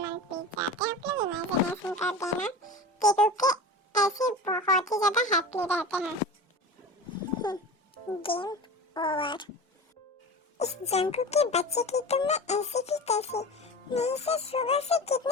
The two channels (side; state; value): both; normal; correlation 0.32